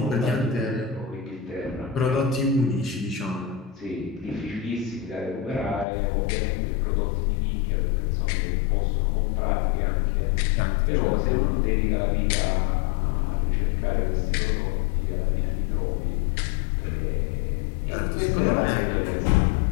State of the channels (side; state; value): right; drops out; at 5.9 s